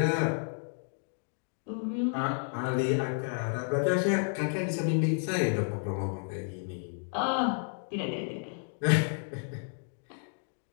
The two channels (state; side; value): silent; right; 57 dB below the other